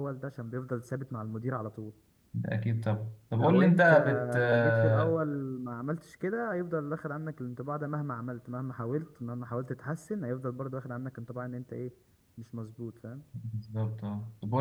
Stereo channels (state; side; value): identical; both; correlation 1.00